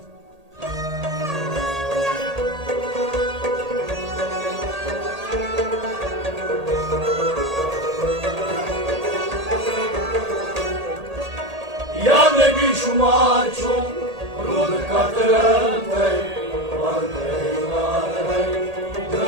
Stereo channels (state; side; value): late; left; 1.8 ms